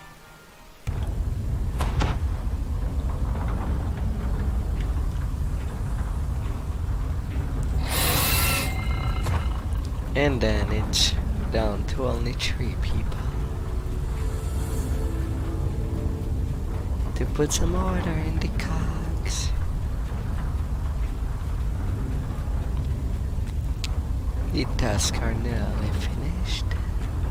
And then it's down to only 3 people. To put some order in the cogs. The tasks are nearly finished.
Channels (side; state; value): both; identical; correlation 1.00